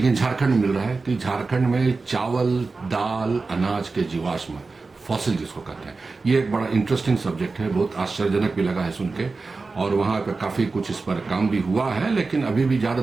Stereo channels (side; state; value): left; quieter; 3.9 dB